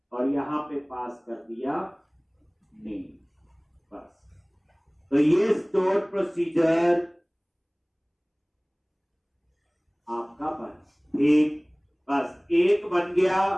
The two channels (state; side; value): identical; both; correlation 1.00